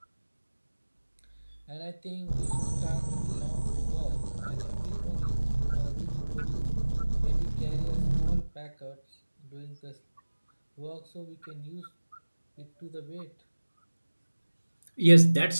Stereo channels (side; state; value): both; inverted; correlation -1.00